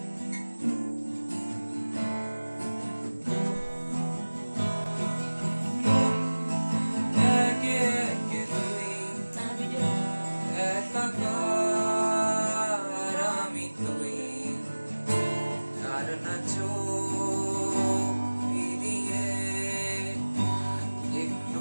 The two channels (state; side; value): inverted; both; correlation -1.00